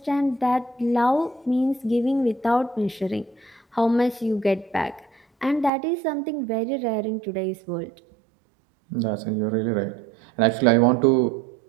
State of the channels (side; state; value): left; drops out; at 5.7 s